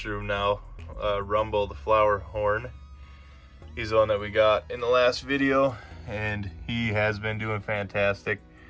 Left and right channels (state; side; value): identical; both; correlation 1.00